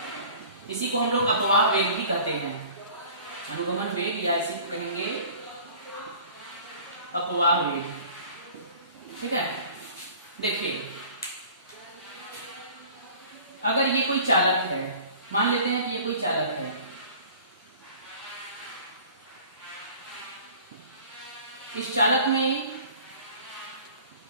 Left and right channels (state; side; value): inverted; both; correlation -0.47